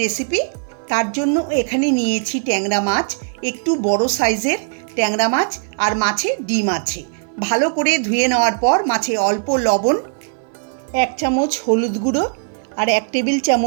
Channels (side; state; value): left; silent; 56 dB below the other